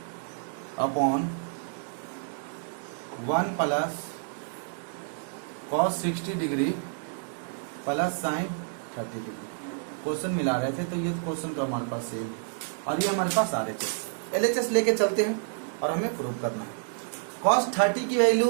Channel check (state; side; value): silent; left; 59 dB below the other